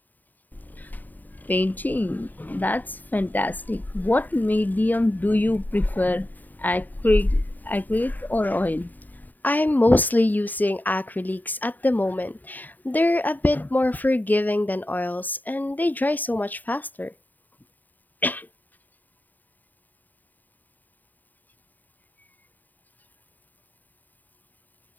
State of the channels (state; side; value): late; right; 0.086 ms